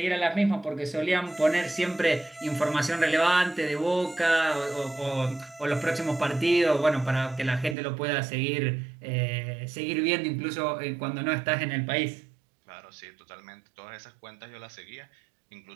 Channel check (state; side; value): drops out; left; at 7.8 s